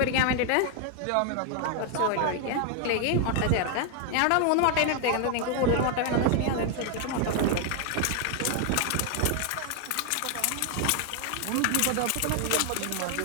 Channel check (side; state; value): both; different; correlation 0.00